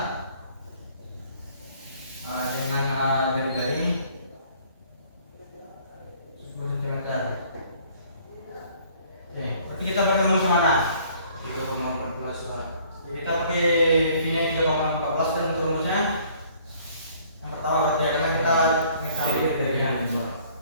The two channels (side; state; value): both; inverted; correlation -0.57